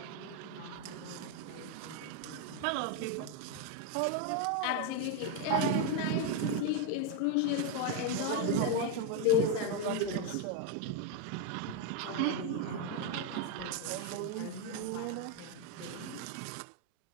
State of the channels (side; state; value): both; different; correlation 0.01